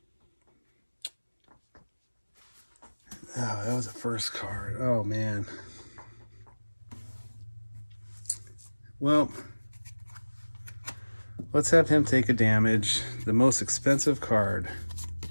oh, that was the first card. Oh, man. Well, let's have him take a damage. The most expensive card.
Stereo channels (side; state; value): both; inverted; correlation -1.00